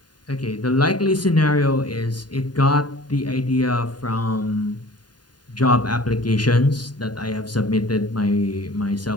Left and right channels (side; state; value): right; late; 0.70 ms